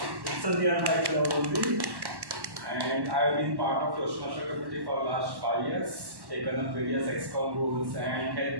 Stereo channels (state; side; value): late; left; 1.1 ms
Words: It's a nearby club only. And I've been part of Toastmaster committee for the last 5 years, taken up various ExCom roles and head